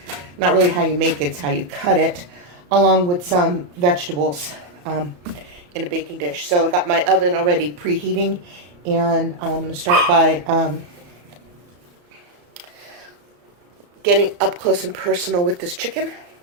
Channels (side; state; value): left; late; 34 ms